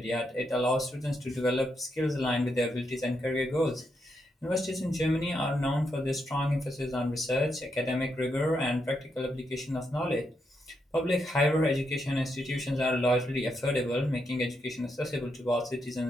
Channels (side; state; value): both; normal; correlation 0.81